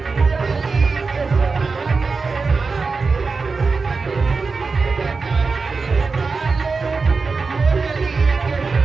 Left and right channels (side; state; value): left; quieter; 4.4 dB